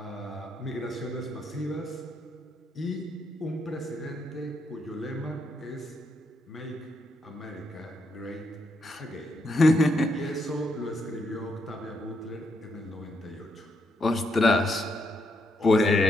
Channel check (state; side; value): normal; both; correlation 0.78